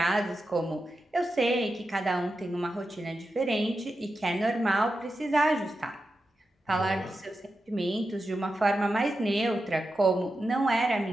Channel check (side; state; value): both; normal; correlation 0.90